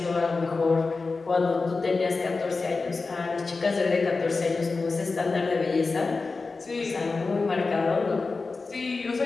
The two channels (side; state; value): right; quieter; 4.0 dB